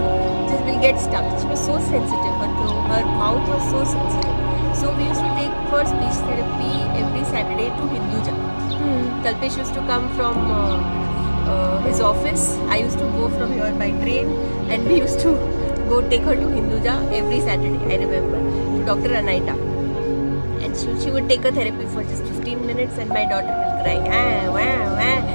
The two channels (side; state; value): both; inverted; correlation -1.00